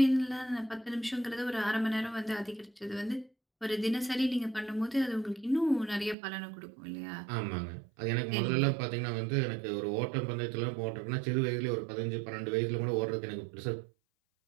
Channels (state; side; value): drops out; left; at 6.2 s